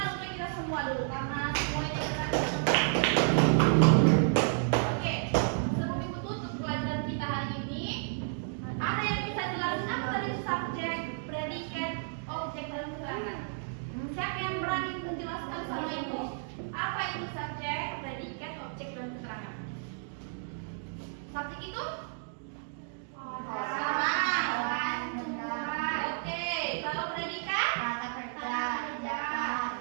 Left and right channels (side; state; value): left; silent; digital silence